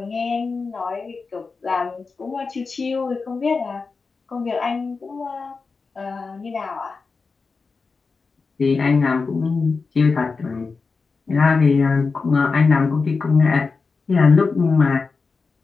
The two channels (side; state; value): right; quieter; 4.5 dB